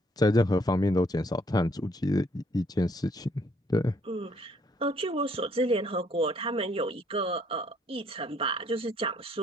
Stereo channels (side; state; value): both; normal; correlation 0.66